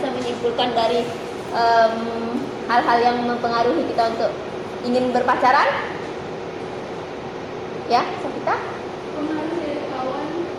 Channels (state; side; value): identical; both; correlation 1.00